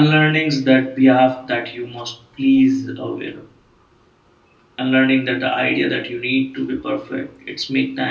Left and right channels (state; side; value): identical; both; correlation 1.00